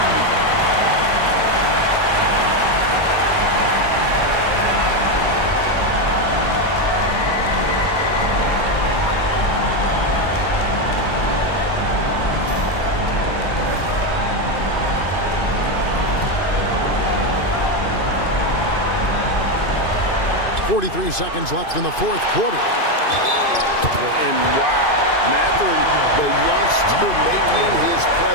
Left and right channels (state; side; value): late; right; 2.5 ms